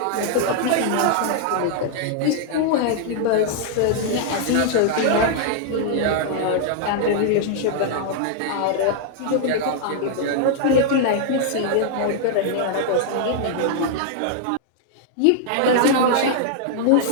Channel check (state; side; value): different; both; correlation 0.00